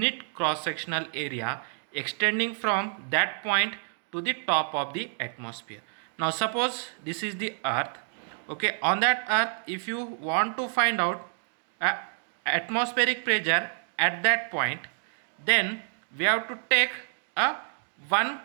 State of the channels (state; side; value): silent; left; digital silence